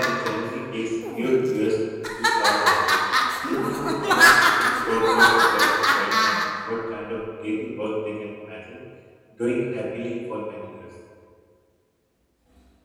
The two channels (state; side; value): identical; both; correlation 1.00